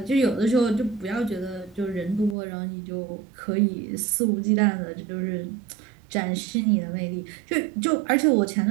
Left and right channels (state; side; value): drops out; left; at 2.4 s